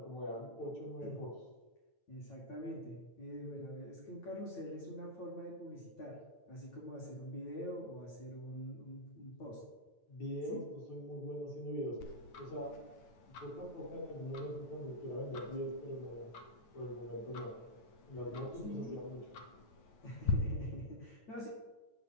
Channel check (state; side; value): late; right; 9.1 ms